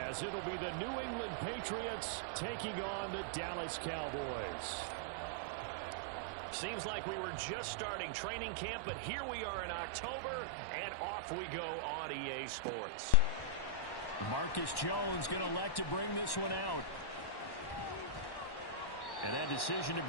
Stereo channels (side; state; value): right; late; 1.1 ms